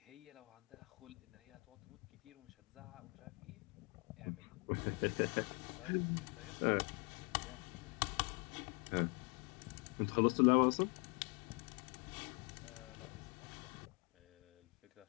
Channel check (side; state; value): right; quieter; 32.5 dB